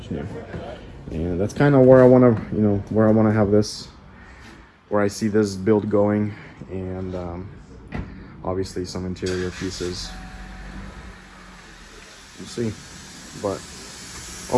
new, and that's kind of where I want to have this, where I see this build going, and obviously some interior pieces. We'll see, but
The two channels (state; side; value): identical; both; correlation 1.00